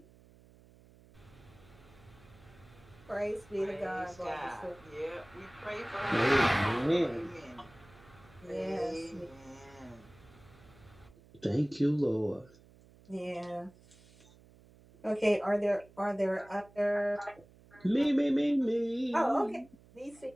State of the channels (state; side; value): noise; right; hum, 25 dB below the sound